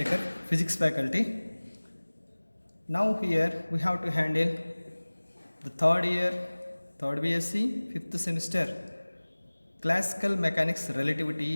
physics faculty. Now here we have to handle the third year, third BSc, fifth semester, classical mechanics,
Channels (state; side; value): inverted; both; correlation -1.00